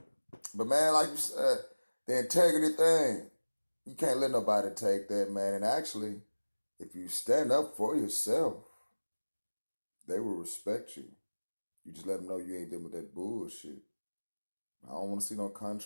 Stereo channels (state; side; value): inverted; both; correlation -1.00